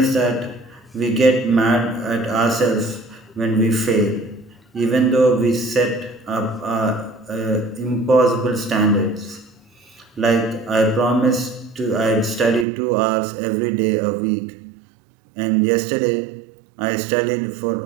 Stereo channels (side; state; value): left; drops out; at 12.7 s